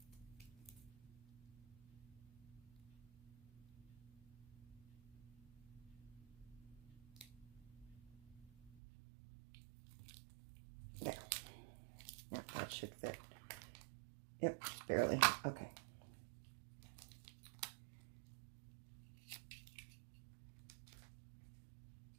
There. Yeah, that should fit. Yep, just barely. Okay.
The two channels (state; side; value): drops out; left; at 8.7 s